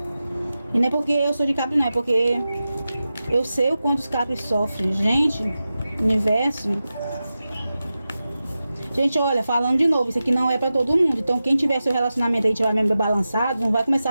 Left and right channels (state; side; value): inverted; both; correlation -0.93